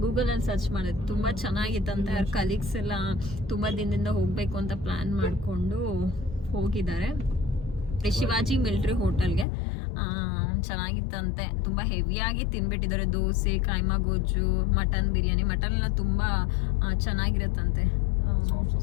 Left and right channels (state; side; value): drops out; right; at 9.5 s